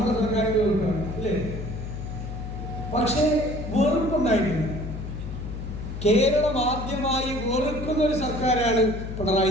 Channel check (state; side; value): noise; left; hum, 7 dB below the sound